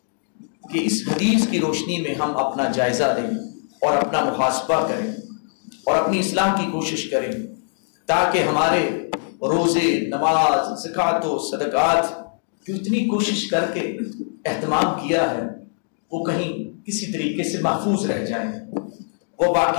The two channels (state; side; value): silent; right; digital silence